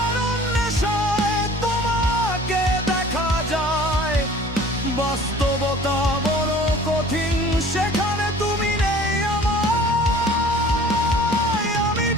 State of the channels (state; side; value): normal; both; correlation 0.47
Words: নেশায় তোমাকে দেখা যায়। বাস্তবতা বড় কঠিন, সেখানে তুমি নেই আমার। আমি